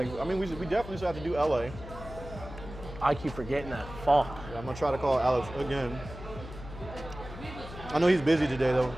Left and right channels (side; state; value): left; noise; hum, 13 dB below the sound